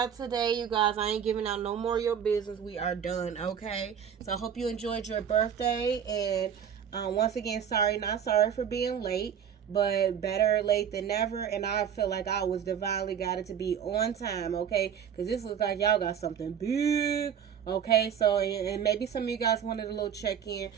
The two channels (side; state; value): left; quieter; 8.3 dB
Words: today, you guys. I ain't giving out no more of your business. We are done, okay? So I hope you enjoyed your birthday. And once again, not sorry for being late. But better late than never. And I feel like I was divinely guided to be on time, okay? Because this looks like y'all got something big. Okay, so, and maybe some of you guys wanted a little check-in